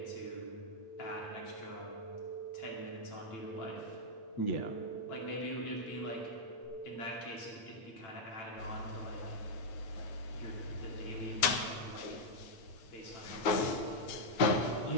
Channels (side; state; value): right; late; 9.3 ms